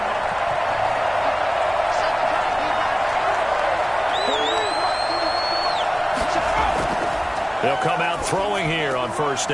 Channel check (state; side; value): identical; both; correlation 1.00